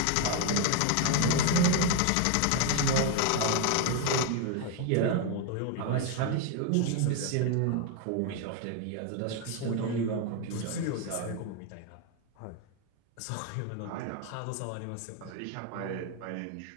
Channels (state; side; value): different; both; correlation 0.01